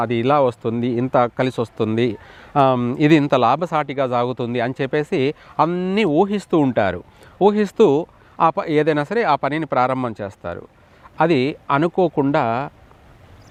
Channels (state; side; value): identical; both; correlation 1.00